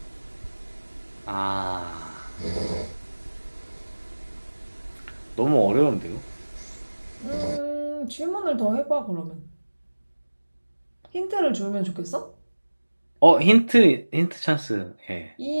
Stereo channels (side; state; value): both; inverted; correlation -1.00